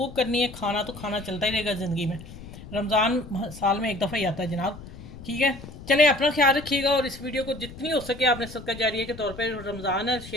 करनी है। खाना तो खाना चलता ही रहेगा ज़िंदगी में, रमज़ान साल में एक दफ़ा ही आता है जनाब। ठीक है, चलें, अपना ख्याल रखिएगा, और इस वीडियो को जितनी हो सके आपने सदका जारिया के तौर पर, रमज़ान है,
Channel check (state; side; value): noise; left; rumble, 15 dB below the sound